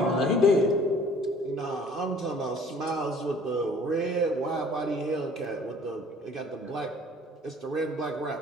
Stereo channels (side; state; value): both; normal; correlation 0.53